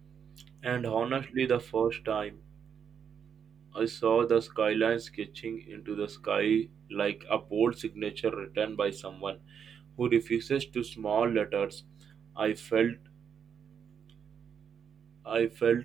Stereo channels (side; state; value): left; quieter; 7.5 dB